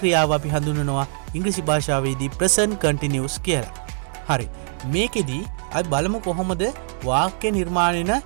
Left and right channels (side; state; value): left; silent; 63 dB below the other